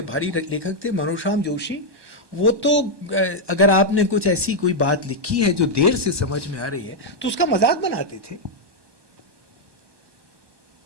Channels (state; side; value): late; left; 1.2 ms